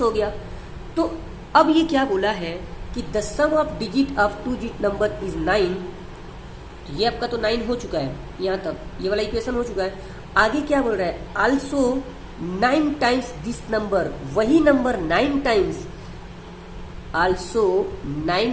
हो गया। तो अब ये क्या बोला है कि the sum of digit of 2 digit number is 9। तो ये आपका तो 9 हो चुका है, यहाँ तक ये वाला इक्वेशन हो चुका है। आगे क्या बोल रहा है, आल्सो 9 टाइम्स दिस नंबर, वही number 9 times, also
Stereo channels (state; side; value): identical; both; correlation 1.00